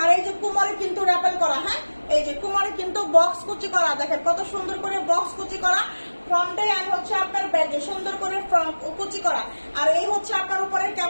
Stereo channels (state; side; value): inverted; both; correlation -1.00